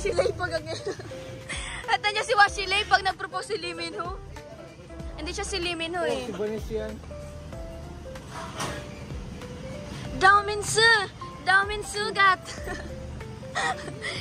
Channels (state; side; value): identical; both; correlation 1.00